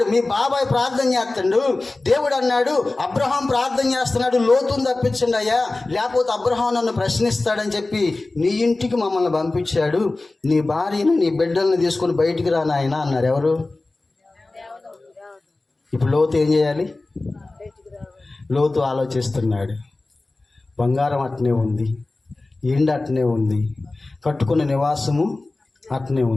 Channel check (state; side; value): quieter; right; 3.2 dB